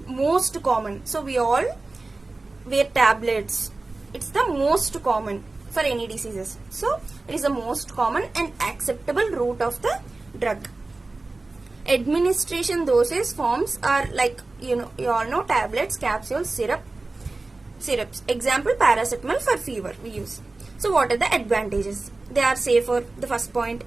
most common. So we all wear tablets. It's the most common for any diseases. So it is the most common and acceptable route of the drug. Administration dosage forms are like, you all know, tablets, capsules, syrups. Example, paracetamol for fever we use. So what are the advantages? They are safer, the first point,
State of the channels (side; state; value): left; quieter; 3.3 dB